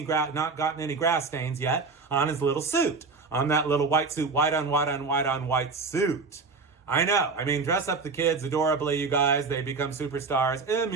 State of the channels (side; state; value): left; quieter; 4.3 dB